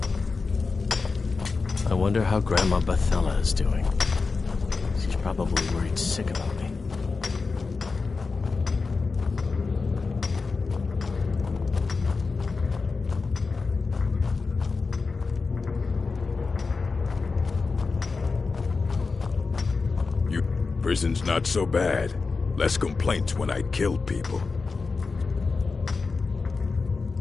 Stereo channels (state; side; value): quieter; right; 4.4 dB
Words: I wonder how Grandma Bethella is doing. She's probably worried sick about me. Prison's not so bad. Less complaints when I killed people.